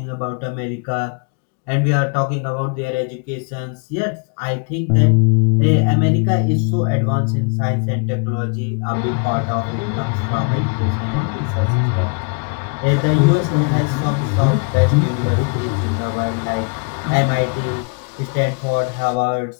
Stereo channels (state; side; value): quieter; right; 35.8 dB